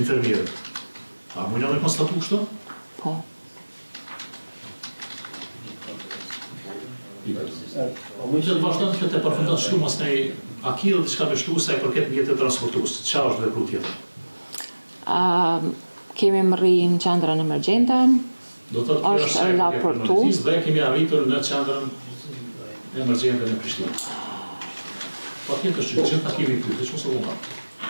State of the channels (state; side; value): inverted; both; correlation -1.00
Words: infermierët. A mundja me konstatu kështu? Po. Mund të vazhdon të përfundon shtu mas ne a ki dhe diçka me shtu sa i përket mjetet transportues. Çfarë është vepru tjetër? Kemi mri në qendrën emergjente. Do të thotë është raportu. Dhe kemi arritur në qendrën emergjente në Prishtinë. Patjetër që gjitha kemi këtu, që mos u vëmë.